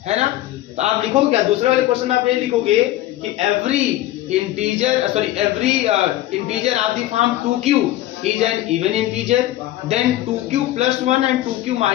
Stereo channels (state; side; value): quieter; right; 14.9 dB